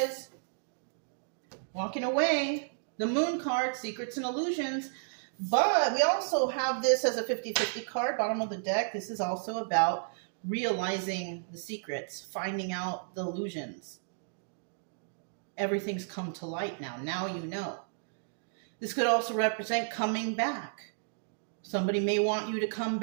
Walking away. The Moon card, Secrets and Illusions. But we also have this as a 50-50 card, bottom of the deck. This is also about realizing the secrets, finding out the illusions. Everything's come to light now. Now you know. This could also represent coming back. Somebody may want you to come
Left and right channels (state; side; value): silent; left; digital silence